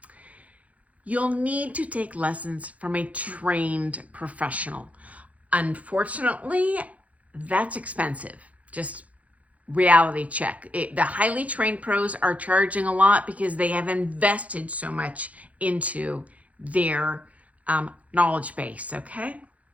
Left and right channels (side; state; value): left; late; 0.068 ms